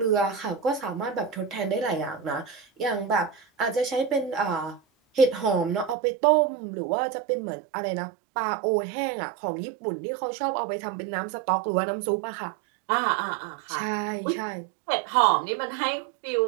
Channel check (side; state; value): left; drops out; at 6.0 s